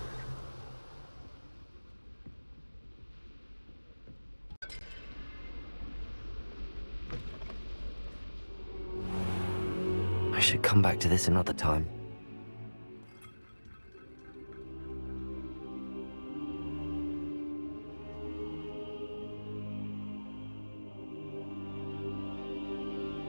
I should come back to this another time.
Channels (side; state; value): both; inverted; correlation -1.00